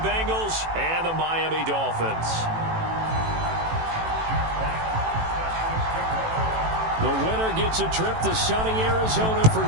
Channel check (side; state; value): left; late; 18 ms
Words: Bengals and the Miami Dolphins. The winner gets a trip to sunny Arizona for